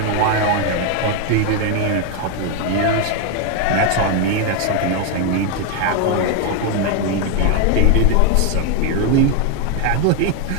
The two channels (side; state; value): both; different; correlation 0.01